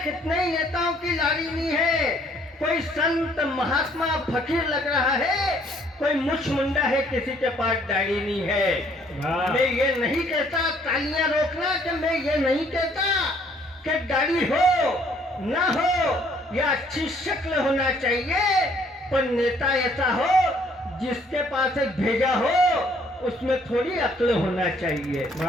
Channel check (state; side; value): normal; both; correlation 0.63